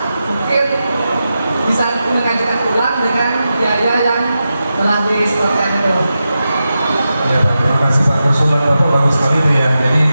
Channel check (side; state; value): both; inverted; correlation -0.90